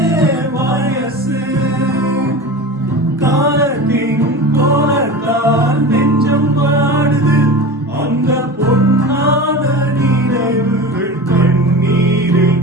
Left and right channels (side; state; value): both; normal; correlation 0.30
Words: வயசு காலத்தின் கோலத்தால் நெஞ்சம் பாடுது அந்த பொன்னான நினைவுகள் கண்ணீரில்